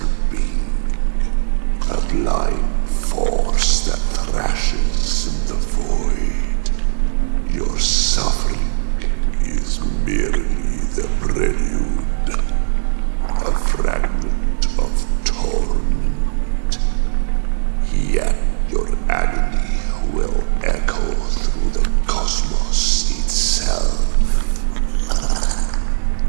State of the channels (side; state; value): left; silent; digital silence